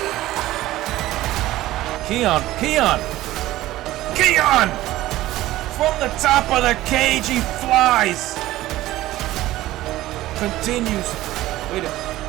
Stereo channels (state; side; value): quieter; left; 15.9 dB